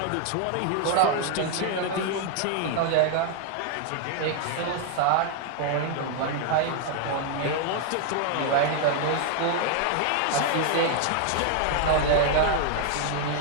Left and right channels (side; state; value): both; different; correlation 0.00